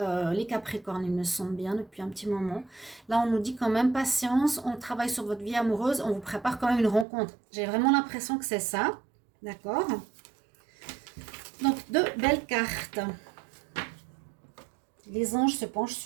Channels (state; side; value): drops out; left; at 7.1 s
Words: Les Capricornes, ils me sentent bien depuis un petit moment. Là, on nous dit quand même patience, on travaille sur votre vie amoureuse, on vous prépare quand même une rencontre. J'ai vraiment l'impression que c'est ça. D'accord? Donc, deux belles cartes. Les anges se penchent